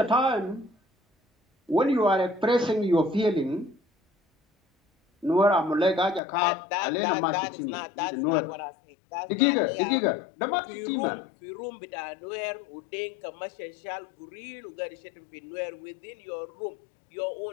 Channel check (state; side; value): drops out; right; at 6.2 s